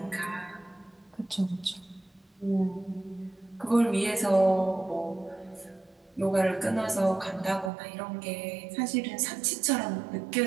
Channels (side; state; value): left; drops out; at 7.7 s